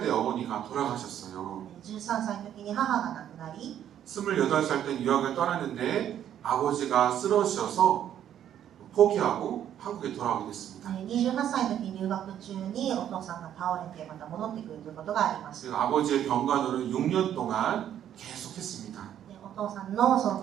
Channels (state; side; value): quieter; left; 10.4 dB